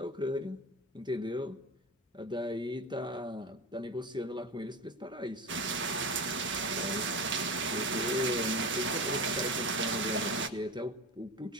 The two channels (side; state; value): both; normal; correlation 0.26